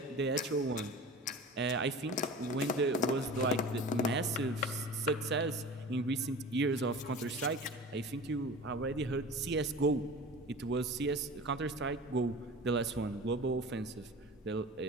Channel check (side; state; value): both; normal; correlation 0.36